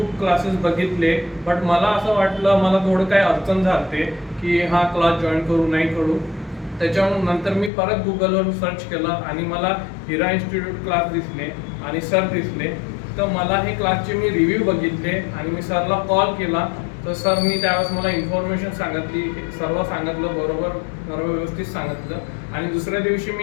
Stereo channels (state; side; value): drops out; right; at 7.7 s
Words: क्लासेस बघितले, बट मला असं वाटलं मला थोडं काही अडचण झाली की हा क्लास जॉईन करू नाही करू. त्याच्यानंतर मी परत गुगलवर सर्च केलं आणि मला हिरा इन्स्टिट्यूट क्लास दिसले आणि सर दिसले. तर मला हे क्लासचे मी रिव्ह्यू बघितले आणि मी सरला कॉल केला. तर सरनी त्यावेळेस मला इन्फॉर्मेशन सांगितली, सर्व सांगितलं, बरोबर सर्व व्यवस्थित सांगितलं. आणि दुसऱ्या दिवशी